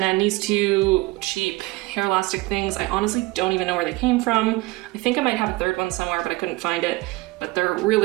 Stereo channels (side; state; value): left; quieter; 21.7 dB